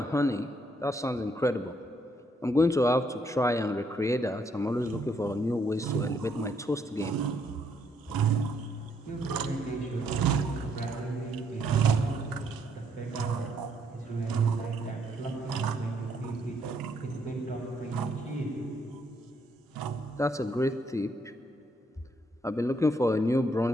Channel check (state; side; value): normal; both; correlation 0.71